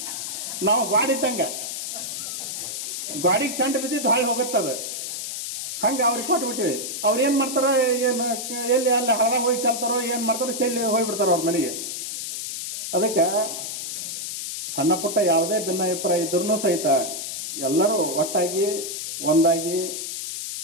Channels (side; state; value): left; noise; hiss, 5 dB below the sound